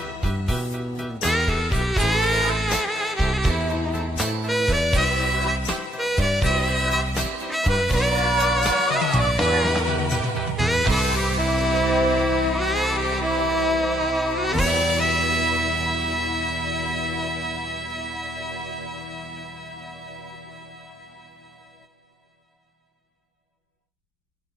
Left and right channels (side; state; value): both; normal; correlation 0.73